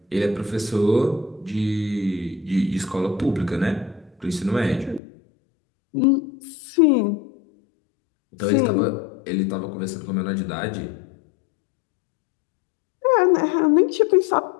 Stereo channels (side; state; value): right; drops out; at 5.0 s